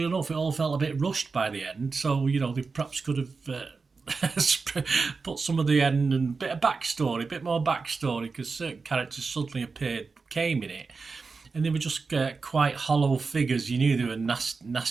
enough, it all felt a bit rushed by the end. So, they perhaps could have put some of the end and a bit more backstory, because certain characters suddenly came in it, and they were just quite hollow figures. You knew they were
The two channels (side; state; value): left; quieter; 4.5 dB